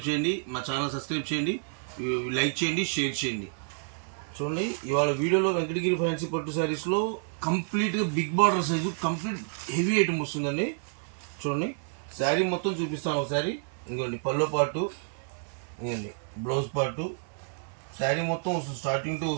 చేయండి, మా ఛానల్ సబ్స్క్రైబ్ చేయండి, లైక్ చేయండి, షేర్ చేయండి. చూడండి, ఇవాళ వీడియోలో వెంకటగిరి ఫ్యాన్సీ పట్టు శారీస్లో కంప్లీట్గా big border size complete heavy item వస్తుందండి. చూడండి, శారీ మొత్తం చూపిస్తాను ఒకసారి. ఇంకోండి పల్లో పాటు, ఇంకోండి బ్లౌజ్ పాటు, శారీ మొత్తం వస్తుంది. స్టార్టింగ్ టు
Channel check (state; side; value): silent; left; 58 dB below the other